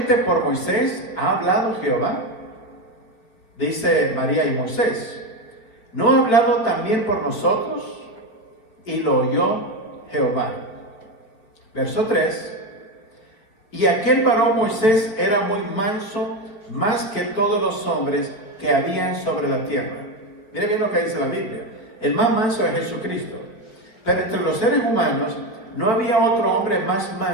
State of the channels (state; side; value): late; right; 5.1 ms